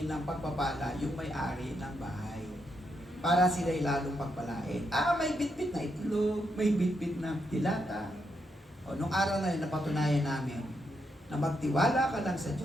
ng pagpapala, yung may-ari ng bahay. Para sila'y lalong pagpalain. May bitbit na itlog, may bitbit na dilata. O, nung araw na yun, napatunayan namin na magtiwala ka lang sa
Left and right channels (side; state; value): both; normal; correlation 0.80